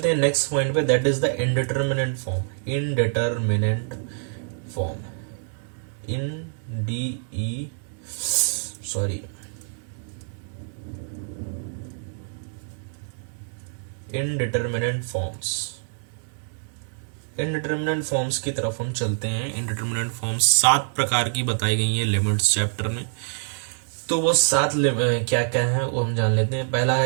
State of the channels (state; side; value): silent; left; 61 dB below the other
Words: हैं नेक्स्ट पॉइंट पे, that is the indeterminate form, indeterminate forms की तरफ हम चलते हैं। इनडिटरमिनेंट फॉर्म्स 7 प्रकार की बताई गई है लिमिट्स चैप्टर में, तो वो 7 क्या क्या है वो हम जान लेते हैं। पहला